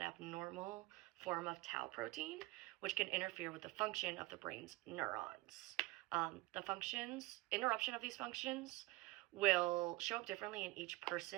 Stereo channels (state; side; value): quieter; left; 20.5 dB